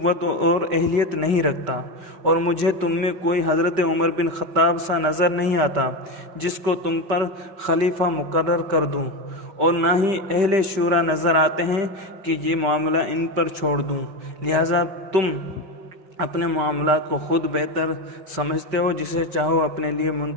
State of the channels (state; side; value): late; left; 5.2 ms